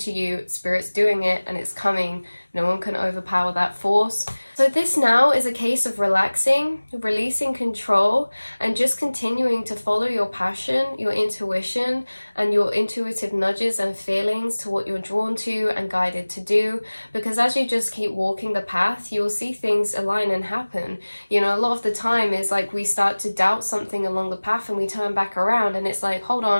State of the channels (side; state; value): both; inverted; correlation -1.00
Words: you, spirit's doing it and it's coming. No one can overpower that force. So this now is a case of relaxing, releasing control, and just continuing to follow your passion, your intuition, and your intuitive nudges and feelings to what you're drawn to and guided to do. Because as you just keep walking the path, you'll see things align and happen. A lot of the time is like we start to doubt something along the path and we turn back around and it's like, hold